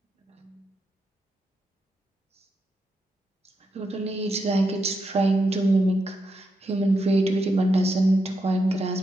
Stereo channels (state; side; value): normal; both; correlation 0.84